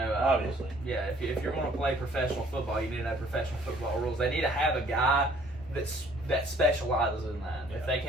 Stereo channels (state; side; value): normal; both; correlation 0.58